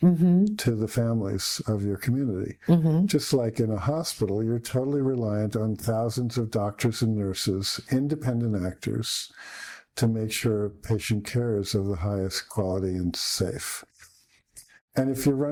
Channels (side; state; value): both; identical; correlation 1.00